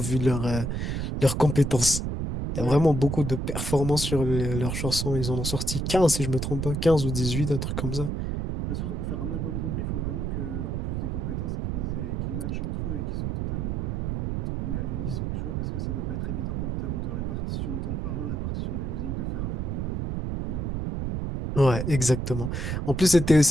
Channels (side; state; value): right; noise; rumble, 2 dB below the sound